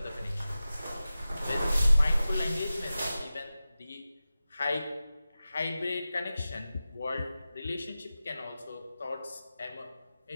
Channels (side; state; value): both; inverted; correlation -0.95